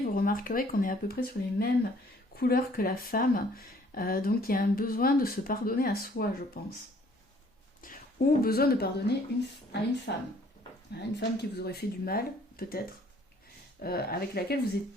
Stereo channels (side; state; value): both; normal; correlation 0.59